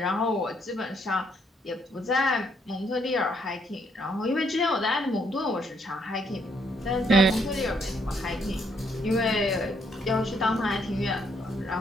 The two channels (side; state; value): both; normal; correlation 0.71